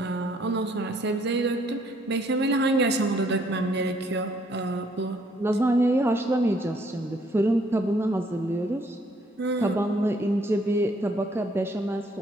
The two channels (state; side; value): normal; both; correlation 0.66